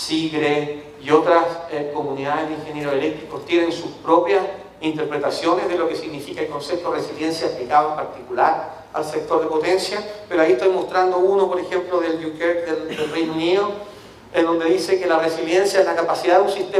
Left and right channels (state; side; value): identical; both; correlation 1.00